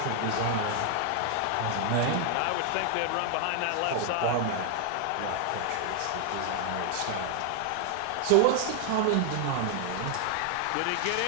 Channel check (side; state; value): both; different; correlation 0.00